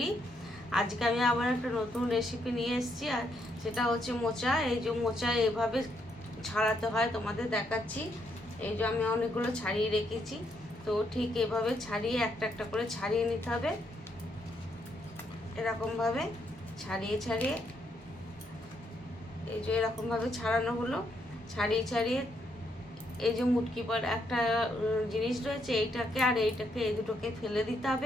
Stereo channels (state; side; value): normal; both; correlation 0.76